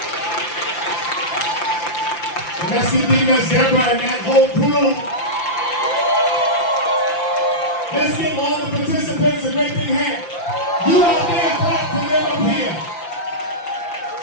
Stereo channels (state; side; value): late; right; 5.8 ms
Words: And let's give Deaconess Deborah and that whole crew. Let's give all the participants a great big hand. You out there, clap to them up here.